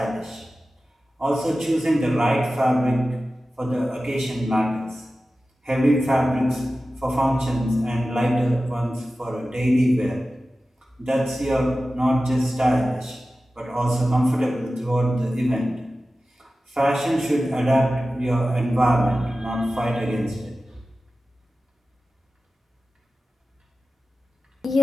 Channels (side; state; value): both; normal; correlation 0.95